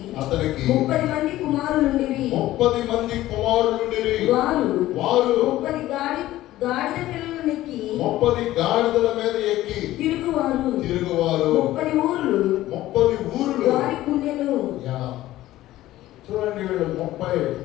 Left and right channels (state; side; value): quieter; right; 15.3 dB